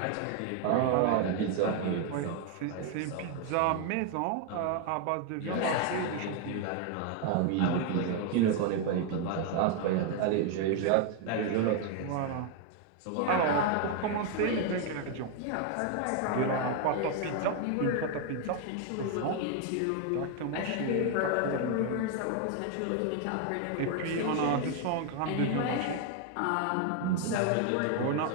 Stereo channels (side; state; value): both; different; correlation 0.00